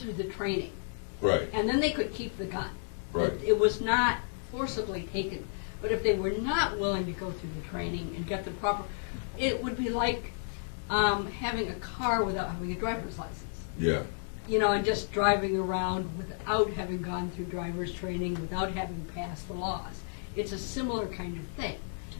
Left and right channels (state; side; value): silent; right; digital silence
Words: the training. Right. And then they could keep the gun. Right. It was not forcibly taken. But if they were not willing to go through the training and get the proper, it would be like having a car without having a driver's license. Yeah. And just driving around without having gone through driver's training, without having passed the laws. It's a similar kind of thing,